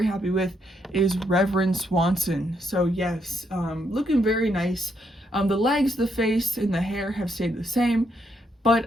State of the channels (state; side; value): normal; both; correlation 0.76